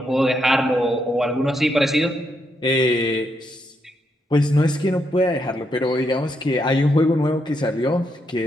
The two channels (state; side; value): normal; both; correlation 0.79